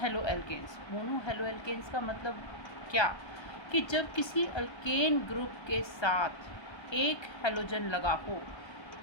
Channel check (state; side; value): late; right; 1.3 ms